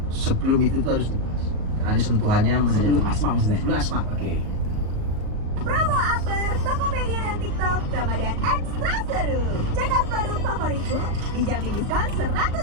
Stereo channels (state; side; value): late; left; 38 ms